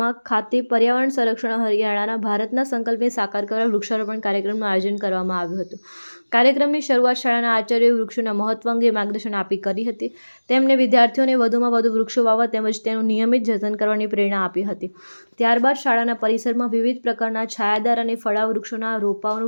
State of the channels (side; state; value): both; inverted; correlation -1.00